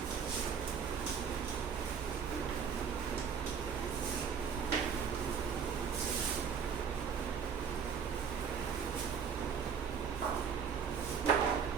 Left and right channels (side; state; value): left; quieter; 6.9 dB